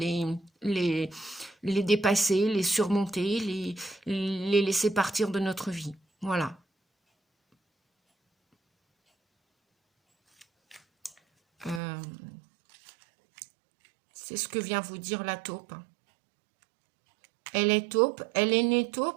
les dépasser, les surmonter, les laisser partir de notre vie. Voilà. C'est ce que vient vous dire la taupe. Elle est taupe, elle est née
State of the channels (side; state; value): left; drops out; at 11.8 s